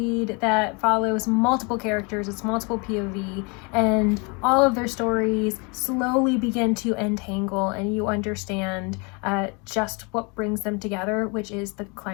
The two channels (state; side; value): quieter; right; 31.5 dB